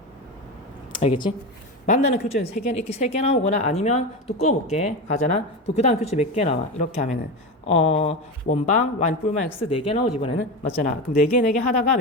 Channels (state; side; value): normal; both; correlation 0.20